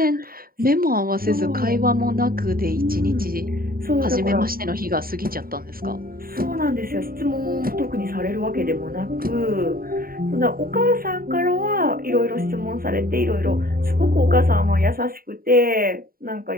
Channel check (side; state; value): left; late; 0.43 ms